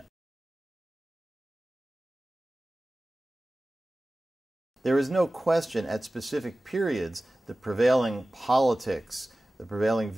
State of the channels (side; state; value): both; normal; correlation 0.97